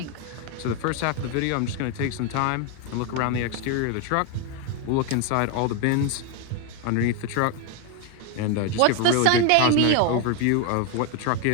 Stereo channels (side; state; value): both; different; correlation 0.01